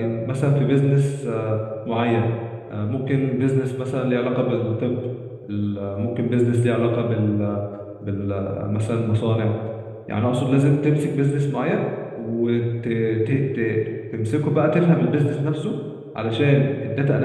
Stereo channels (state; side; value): identical; both; correlation 1.00